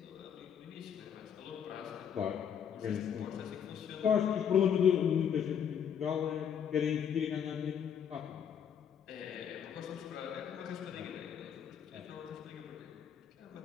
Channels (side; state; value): right; quieter; 8.3 dB